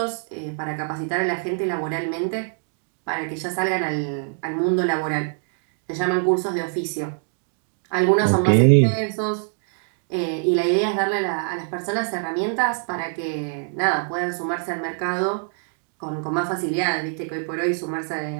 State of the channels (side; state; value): left; silent; 62 dB below the other